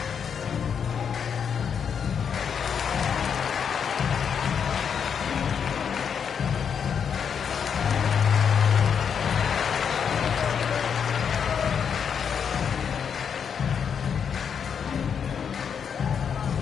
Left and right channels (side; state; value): right; quieter; 7.2 dB